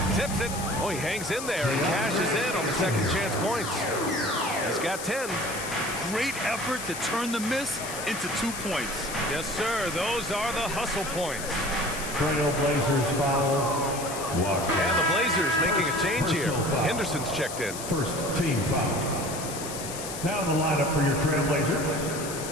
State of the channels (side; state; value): left; noise; hiss, 9 dB below the sound